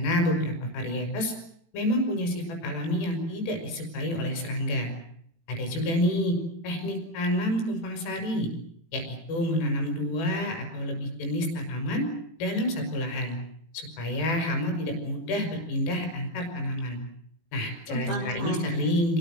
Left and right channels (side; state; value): right; late; 18 ms